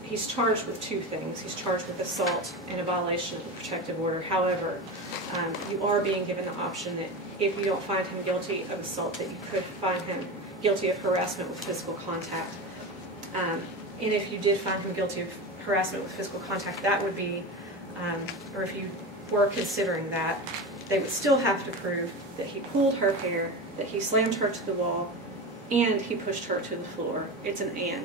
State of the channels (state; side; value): normal; both; correlation 0.24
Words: charged with 2 things. He's charged with assault and a violation of the protective order. However, you are being given the option that if you don't find him guilty of assault, that you could find him guilty of harassment with physical contact. And if you did find him guilty of harassment with physical contact, that would be, or if you were considering that, they would still have to prove that he pulled her hair, that he slammed her to the wall, and he pushed her to the floor. It's an